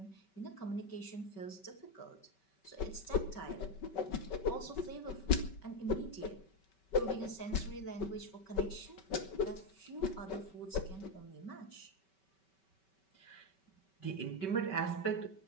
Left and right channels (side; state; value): right; late; 5.2 ms